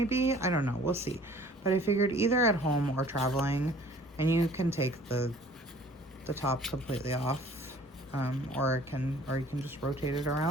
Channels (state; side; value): normal; both; correlation 0.52